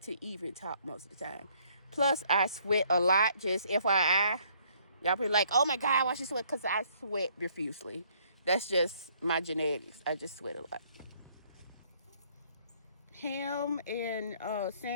even talk most of the time. Plus, I sweat a lot, just FYI. Y'all be like, oh my God, why she sweat? Because I sweat profusely. That's just my genetics. I just sweat a lot. Ham and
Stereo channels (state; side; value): inverted; both; correlation -0.64